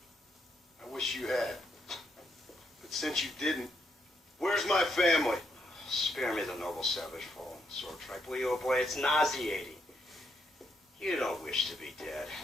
I wish you had. But since you didn't, where's my family? Spare me the noble savage fallen sword tribe, will you, oh boy? It's nauseating. You don't wish to be dead.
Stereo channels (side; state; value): both; normal; correlation 0.78